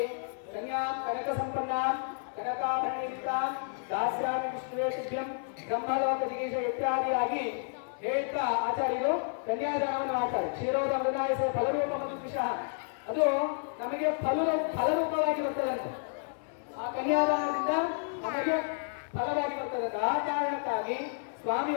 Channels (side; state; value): right; silent; 57 dB below the other